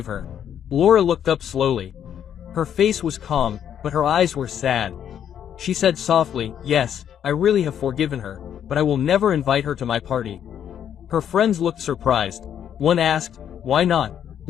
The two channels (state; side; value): quieter; right; 9.3 dB